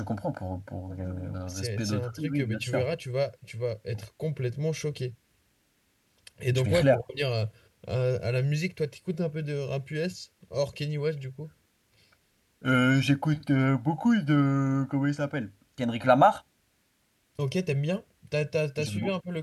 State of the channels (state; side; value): identical; both; correlation 1.00